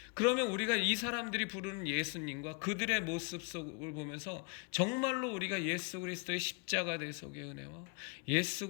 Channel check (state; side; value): quieter; right; 33.2 dB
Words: 그러면 우리가 이 사람들이 부르는 예수님과 그들의 모습 속을 보면서 정말로 우리가 예수 그리스도의 십자가 대속의 은혜와 예수